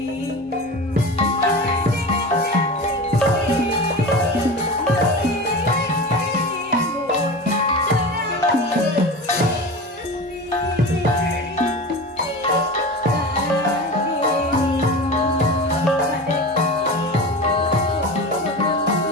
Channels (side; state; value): both; normal; correlation 0.30